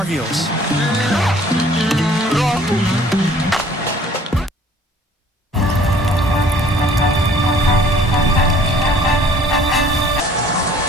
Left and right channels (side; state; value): both; normal; correlation 0.54